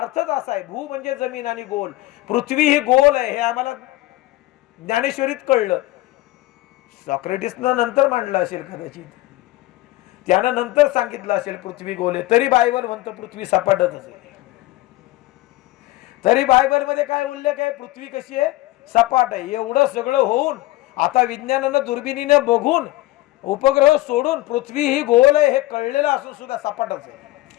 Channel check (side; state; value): right; quieter; 18.1 dB